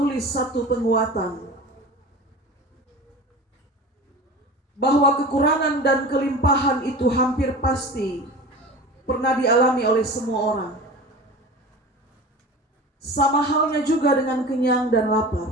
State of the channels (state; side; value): normal; both; correlation 0.35